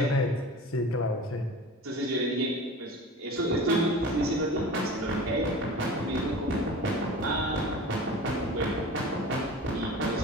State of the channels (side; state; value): both; normal; correlation 0.36